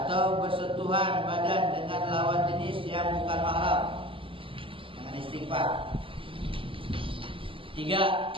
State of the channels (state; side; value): late; left; 0.25 ms